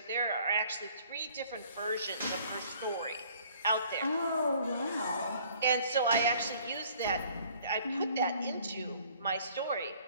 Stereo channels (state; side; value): inverted; both; correlation -0.57